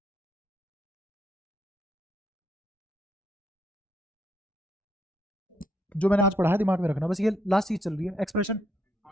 जो मैंने आज पढ़ा है दिमाग में रखना, बस ये लास्ट चीज चल रही है एक्सप्रेशन।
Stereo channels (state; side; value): normal; both; correlation 0.75